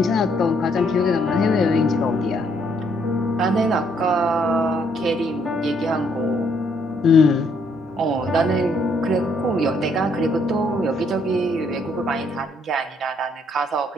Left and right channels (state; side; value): normal; both; correlation 0.69